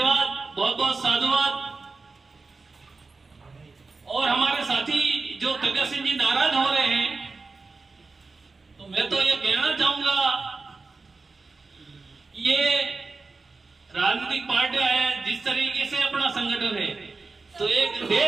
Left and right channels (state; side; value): quieter; left; 4.0 dB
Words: बहुत बहुत साधुवाद। और हमारे साथी जो प्रगट सिंह जी नाराज हो रहे हैं, तो मैं तो ये कहना चाहूंगा, ये राजनीतिक पार्टियां हैं, जिस तरीके से अपना संगठन है, तो एक